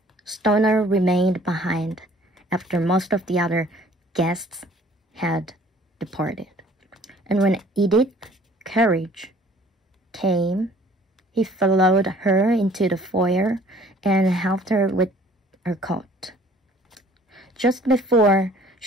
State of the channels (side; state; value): both; normal; correlation 0.54